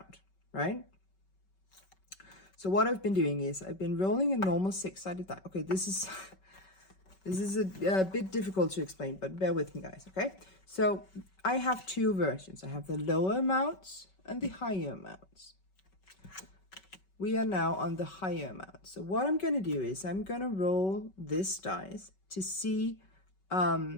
right? So what I've been doing is I've been rolling a normal 6-sided die. Okay, this is a bit difficult to explain, but bear with me, guys, okay? So I have 2 versions. I have the lower amounts and the higher amounts. We are now on the higher amount. So what I'm going to do is I'm going to roll this dice to see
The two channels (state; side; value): late; right; 5.3 ms